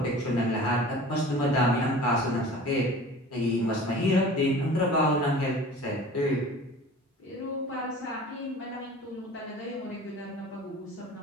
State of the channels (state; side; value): normal; both; correlation 0.42